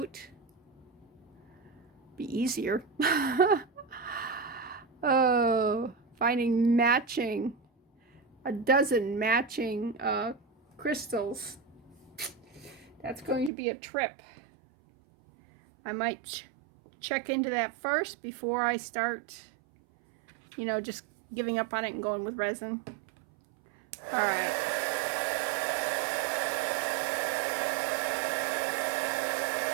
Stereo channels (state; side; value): drops out; left; at 13.5 s